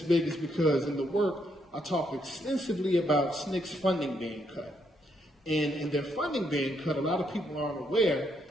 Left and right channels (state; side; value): normal; both; correlation 0.76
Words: big is because in the work, I talked extensively about SNCC's funding being cut. And in their funding being cut, a lot of people aren't aware